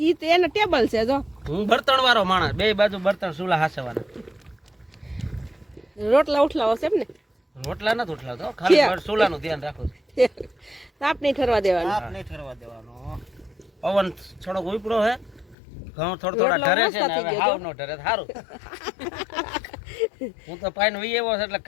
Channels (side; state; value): right; drops out; at 15.6 s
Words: ઈ તો એને ટેબલ છે જો હું બર્તણ વાળો માણસ બે બાજુ બર્તણ ચૂલા હાસવાના રોટલા ઉઠલાવો છે એમ ને રોટલા નથી ઉઠલાવતો ખાલી ચૂલાનું ધ્યાન રાખું છું તાપ નહીં ઠરવા દેવાનું તાપ નહીં ઠરવા દેવાનો. પવન થોડોક ઉપડો હે ઘઉં થોડા ઢરે છે ને હવે હાવ નો ઢરે સારું હું તો પાઈન વહી આવ્યો છે એટલે